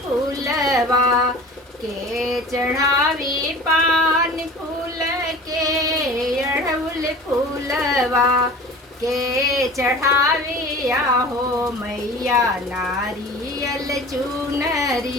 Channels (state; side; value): normal; both; correlation 0.39